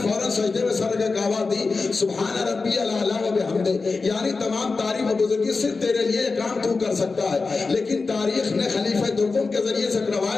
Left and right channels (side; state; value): right; quieter; 4.1 dB